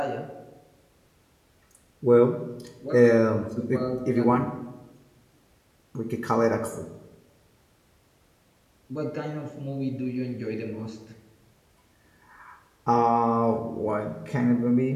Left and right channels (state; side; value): identical; both; correlation 1.00